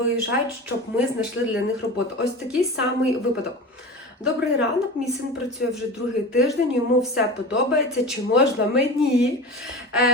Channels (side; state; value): both; normal; correlation 0.32